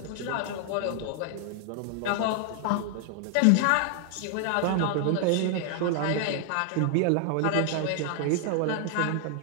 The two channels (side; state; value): both; different; correlation 0.00